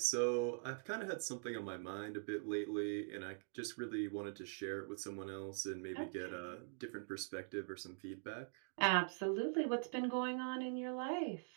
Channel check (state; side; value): silent; left; digital silence